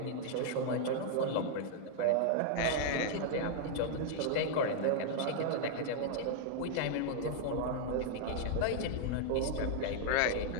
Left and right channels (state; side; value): different; both; correlation -0.01